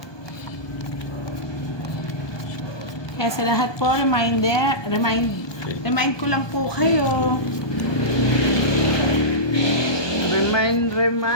Kaya sa lahat po, remind ko lang po kayo.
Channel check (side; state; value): right; late; 1.2 ms